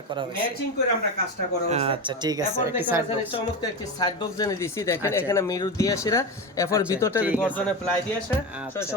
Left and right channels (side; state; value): both; normal; correlation 0.20